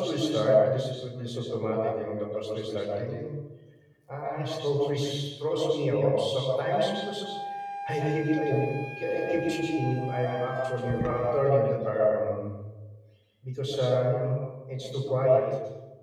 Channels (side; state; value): both; identical; correlation 1.00